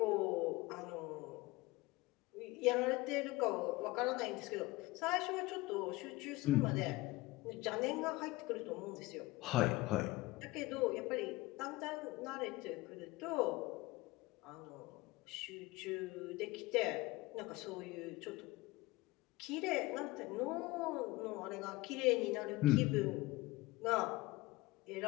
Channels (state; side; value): quieter; right; 20.6 dB